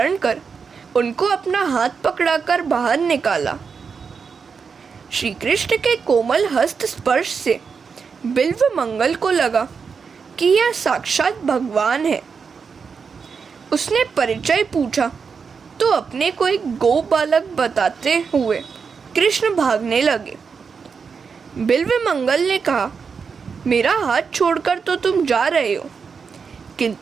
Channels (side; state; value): left; quieter; 5.7 dB